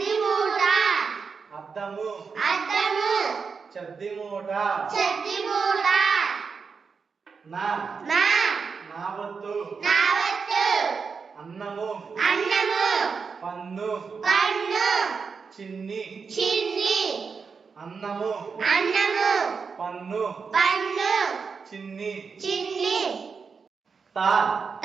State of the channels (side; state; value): left; quieter; 5.4 dB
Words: మూట అద్దము అద్దము చద్ది మూట చెద్ది మూట నా నా నావత్తు నావత్తు అన్నము అన్నము పన్ను పన్ను చిన్ని చిన్ని అన్నము అన్నము పన్ను పన్ను చిన్ని చిన్ని తా